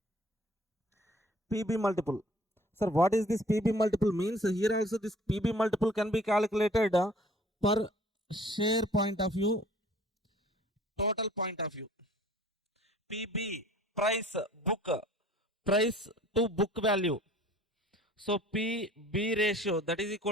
PB multiple. Sir, what is this PB multiple means? Here also this PB multiple can be calculated per share point of view, total point of view. PB, price to book value. So PB ratio, that is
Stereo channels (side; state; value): both; normal; correlation 0.53